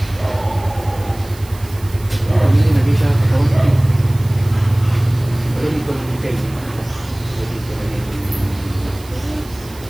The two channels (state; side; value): noise; right; hiss, 21 dB below the sound